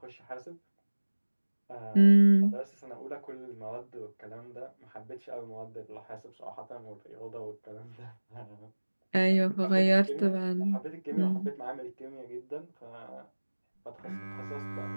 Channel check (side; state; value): both; inverted; correlation -1.00